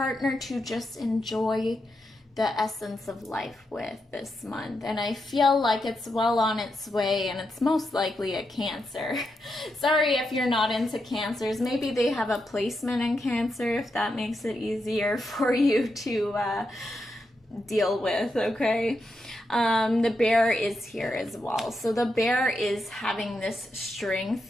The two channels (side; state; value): both; normal; correlation 0.85